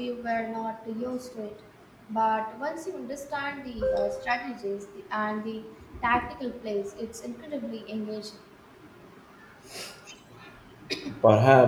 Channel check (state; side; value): identical; both; correlation 1.00